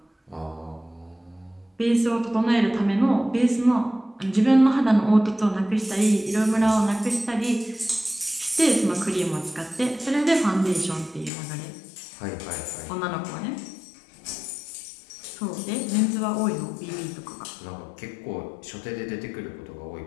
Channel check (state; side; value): drops out; right; at 11.3 s